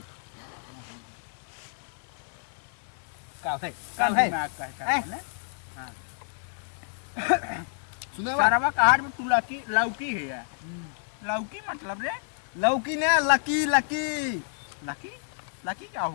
का है सुने सारा कहाड़ में तू लौकी है यार लौकी मतलब रे लौकी ने लकी लकी लकी लकी क्या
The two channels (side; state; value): right; silent; 59 dB below the other